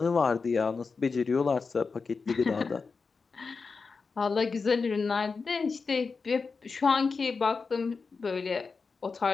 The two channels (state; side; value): quieter; right; 4.7 dB